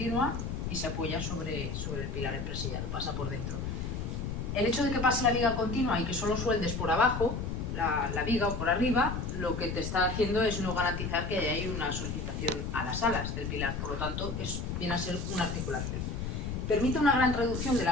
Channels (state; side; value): noise; left; rumble, 3 dB below the sound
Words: y se apoya sobre el pilar empresillado, pasa por dentro. El hecho de que pase la viga continua y que solo sueldes por abajo la viga o por arriba, lo que te está haciendo es no garantizar que hay una solicitación a las alas del pilar, por lo tanto viene a ser una articulación. Permite una gran reducción de la